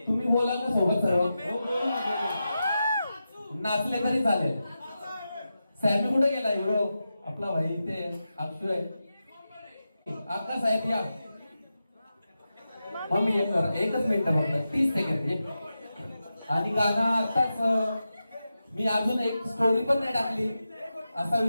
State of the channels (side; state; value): both; inverted; correlation -0.91